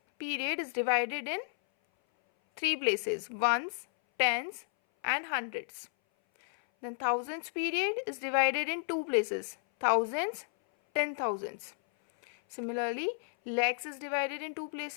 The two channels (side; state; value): right; silent; 56 dB below the other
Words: period is divided in three places: ones, tens and hundreds. Then thousands period is divided in two places: thousands, 10,000s. Similarly, lakhs is divided in two